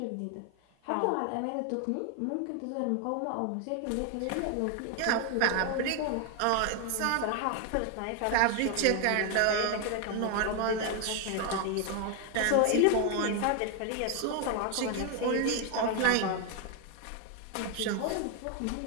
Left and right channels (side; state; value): both; different; correlation 0.01